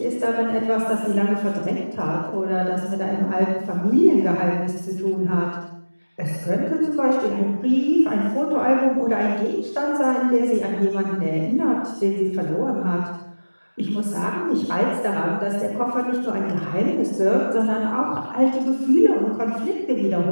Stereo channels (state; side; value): inverted; both; correlation -1.00